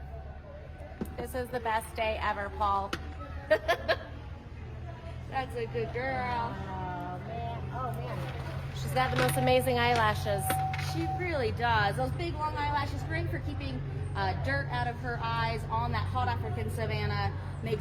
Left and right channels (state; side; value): identical; both; correlation 1.00